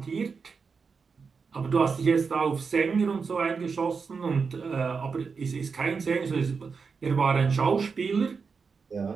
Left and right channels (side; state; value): left; quieter; 5.3 dB